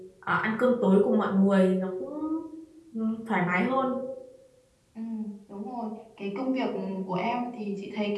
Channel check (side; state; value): both; identical; correlation 1.00